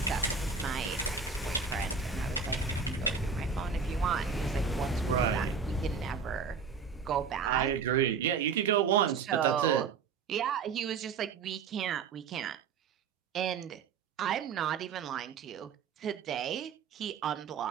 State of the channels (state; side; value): quieter; left; 5.6 dB